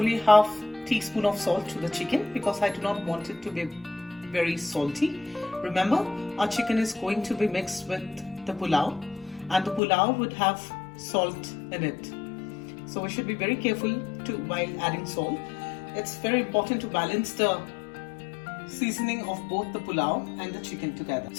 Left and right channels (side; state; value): right; drops out; at 9.8 s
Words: half teaspoon of salt to the chicken because I do not want it to be very salty. Remember, our chicken is going to be mixed with the pulao, and the pulao would have salt in it. So we should be very careful while adding salt. It's very important to balance the seasoning of both the pulao and the chicken together.